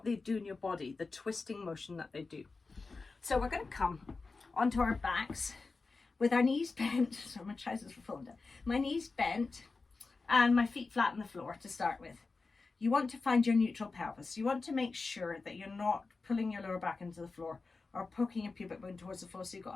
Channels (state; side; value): quieter; right; 4.0 dB